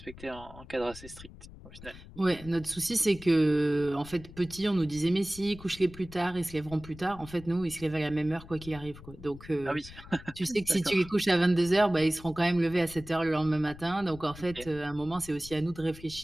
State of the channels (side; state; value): left; noise; rumble, 17 dB below the sound